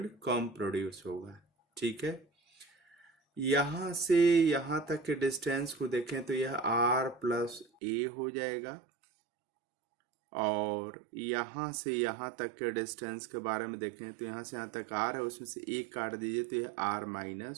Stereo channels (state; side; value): drops out; left; at 7.7 s